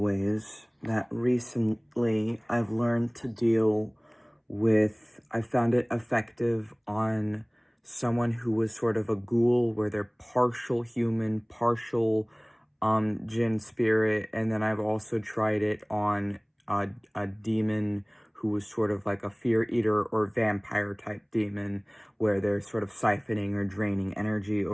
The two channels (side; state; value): both; identical; correlation 1.00